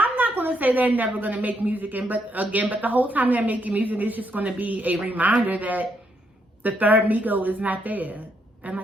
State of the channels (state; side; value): normal; both; correlation 0.76